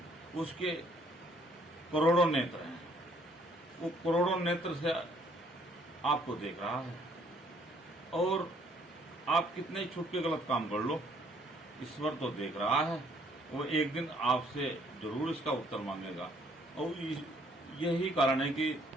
उसके करोड़ों नेत्र हैं, वो करोड़ों नेत्र से आपको देख रहा है। और आप कितने छुप के गलत काम कर लो, ईश्वर तो देख रहा है। वो एक दिन आपसे जरूर इसका उत्तर मांगेगा। और यही कारण है कि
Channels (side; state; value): both; normal; correlation 0.64